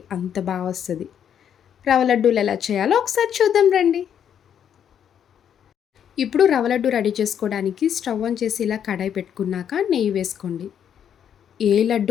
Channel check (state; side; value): quieter; right; 8.9 dB